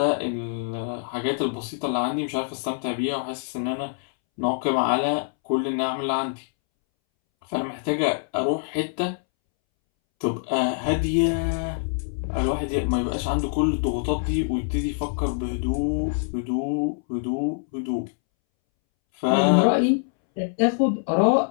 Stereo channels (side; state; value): right; silent; 62 dB below the other